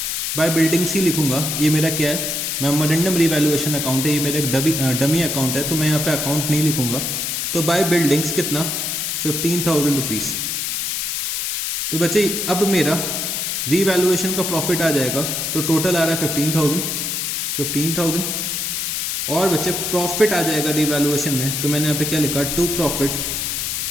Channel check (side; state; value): left; noise; hiss, 1 dB below the sound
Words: By buildings ही लिखूंगा। ये मेरा क्या है, मेमोरेंडम रिवैल्यूएशन अकाउंट है, ये मेरा एक डमी अकाउंट है, तो मैं यहाँ पे अकाउंट नहीं लिखूंगा। तो बाय बिल्डिंग्स कितना, 15,000 रुपीज। तो बच्चे अब मेरा रिवैल्यूएशन का प्रॉफिट आ जाएगा, तो टोटल आ रहा है 15,000। और बच्चे प्रॉफिट आ जाएगा रिवैल्यूएशन में, तो मैंने यहाँ पे क्या लिखा, टू प्रॉफिट